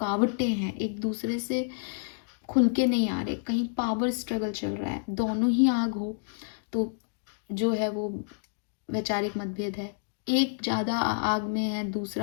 हैं, एक दूसरे से खुल के नहीं आ रहे, कहीं पावर स्ट्रगल चल रहा है, दोनों ही आग हो तो जो है वो वैचारिक मतभेद है। एक ज़्यादा आग में है,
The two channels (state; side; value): silent; right; digital silence